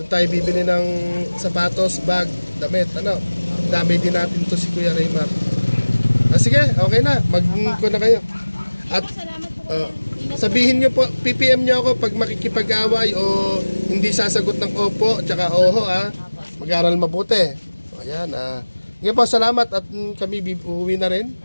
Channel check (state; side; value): inverted; both; correlation -1.00